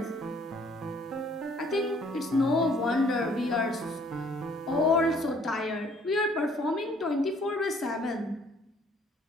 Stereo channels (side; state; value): both; normal; correlation 0.60